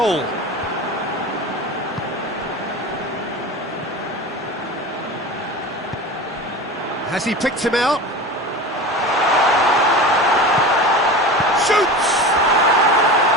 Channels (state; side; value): normal; both; correlation 0.31